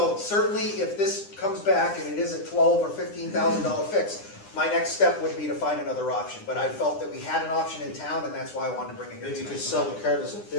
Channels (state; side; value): late; right; 9.8 ms